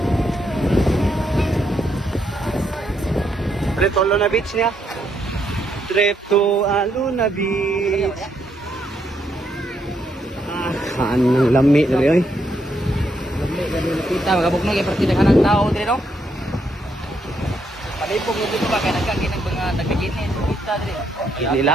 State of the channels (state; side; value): normal; both; correlation 0.76